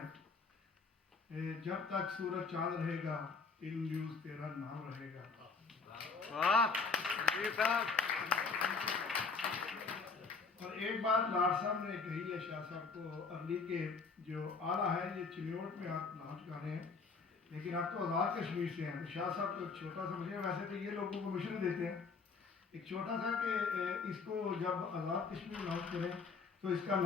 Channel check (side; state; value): right; quieter; 4.7 dB